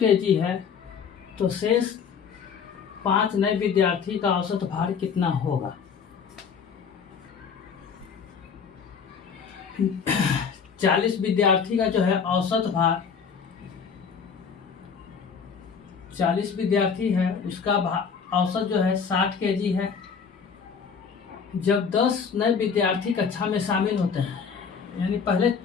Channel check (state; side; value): quieter; right; 6.3 dB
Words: है तो शेष 5 नए विद्यार्थी का औसत भार कितना होगा। 40 विद्यार्थी का जो है औसत भार, 40 विद्यार्थी है उसका औसत जो है 60 केजी है। जब 10 नए विद्यार्थी कक्षा में शामिल होते हैं, यानी पहले